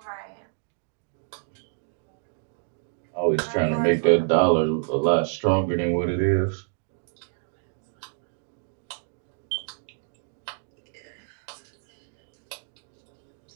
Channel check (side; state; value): left; silent; digital silence